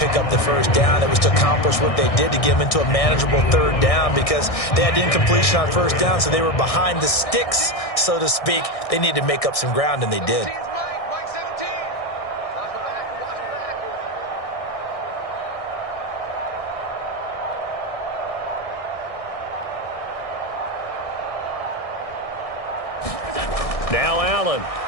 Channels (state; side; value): late; right; 1.6 ms